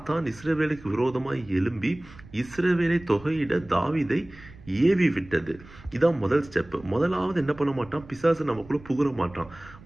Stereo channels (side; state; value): right; noise; rumble, 21 dB below the sound